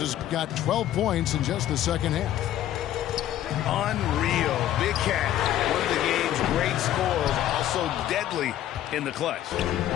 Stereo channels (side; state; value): right; quieter; 12.3 dB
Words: has got 12 points in just the second half. Unreal. Big Cat, one of the game's great scorers, also deadly in the clutch.